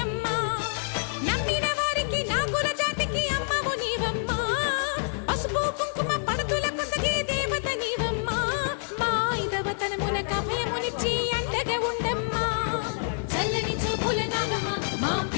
అమ్మ నమ్మిన వారికి నాగుల జాతికి అమ్మవు నీవమ్మ పసుపు కుంకుమ పడతుల కొసగే దేవత నీవమ్మ మా ఐదవతనమున అభయమునిచ్చి అండగా ఉండమ్మా చల్లని చూపుల నాగమ్మ మా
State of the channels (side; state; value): right; silent; digital silence